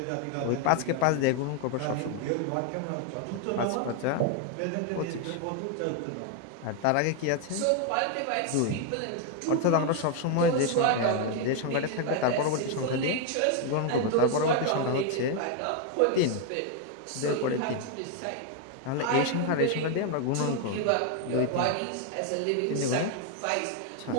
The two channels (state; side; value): different; both; correlation 0.01